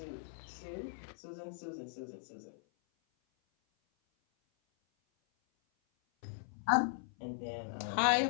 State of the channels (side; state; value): right; silent; 52 dB below the other